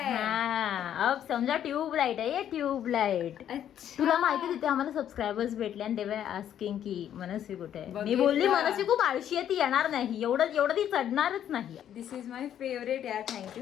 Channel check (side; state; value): right; quieter; 10.2 dB